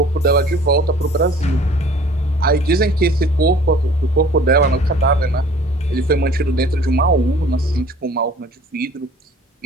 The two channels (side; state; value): both; normal; correlation 0.50